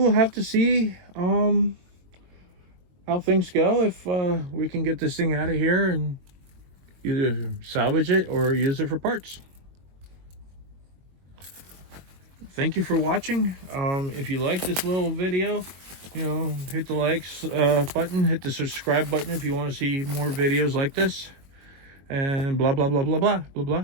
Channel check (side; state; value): left; late; 22 ms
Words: have to see how things go, if we can get this thing out of here and either salvage it or use it for parts. Thank you for watching. If you like this little video, hit the likes button, hit the subscribe button if you want to see more videos like this, and blah blah blah blah blah blah